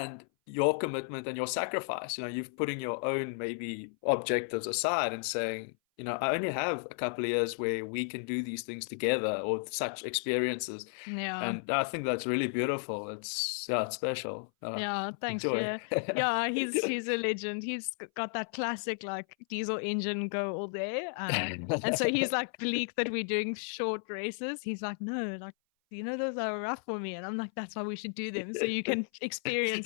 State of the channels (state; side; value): silent; right; 56 dB below the other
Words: your commitment and your sacrifice, you've putting your own maybe objectives aside and saying, I only have a couple of years where we can do these things together or such experiences. Yeah. And I think that's really beautiful. It's special. Yeah, thanks, Enjoy. Pierre. Yeah, he's a legend. He's got that classic like diesel engine go all day. And so he's like bleak that we're doing short races. He's like, no, like those are rough for me. And I'm like, that's why we should do them so you can